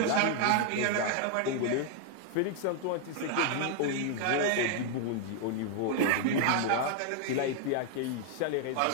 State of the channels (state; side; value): different; both; correlation 0.00